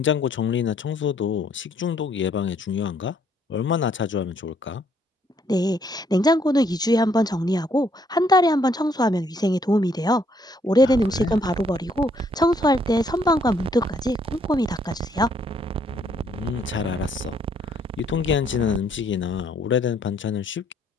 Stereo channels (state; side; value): normal; both; correlation 0.68